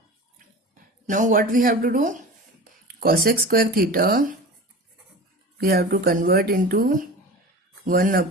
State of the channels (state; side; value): normal; both; correlation 0.34